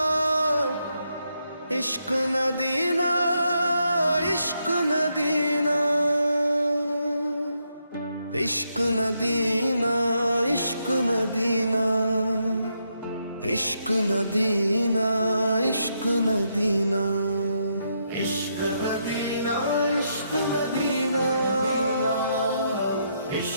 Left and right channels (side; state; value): both; inverted; correlation -0.79